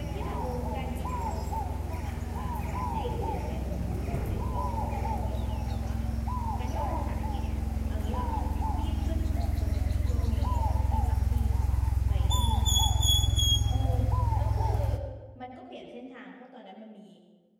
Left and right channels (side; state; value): both; identical; correlation 1.00